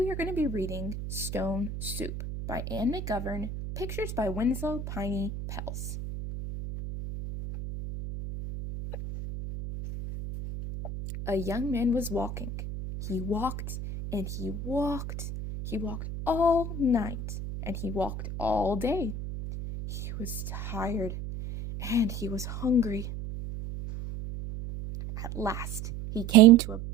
are going to be reading Stone Soup by Ann McGovern, pictures by Winslow Piney Pels. A young man was walking. He walked and he walked. He walked all night and he walked all day. He was tired and he was hungry. At last, he came to a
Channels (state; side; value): noise; right; hum, 7 dB below the sound